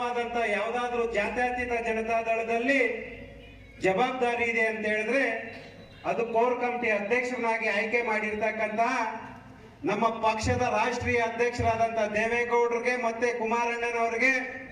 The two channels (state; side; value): identical; both; correlation 1.00